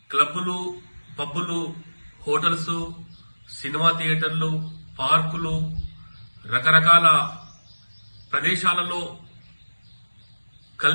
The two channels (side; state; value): both; inverted; correlation -1.00